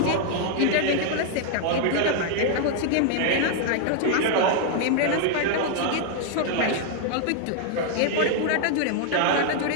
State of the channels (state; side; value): different; both; correlation 0.00